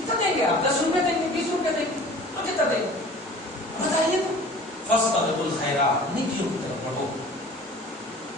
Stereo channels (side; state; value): both; normal; correlation 0.44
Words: دیں گے آپ؟ 10 روپے دیں گے، 20 روپے دیں گے، اور کتنا دیں گے بتائیے تو؟ فاستبقوا الخیرات، نیکیوں کی طرف بڑھو،